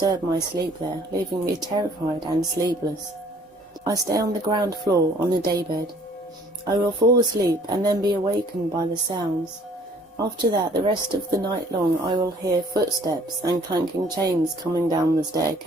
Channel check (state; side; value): normal; both; correlation 0.57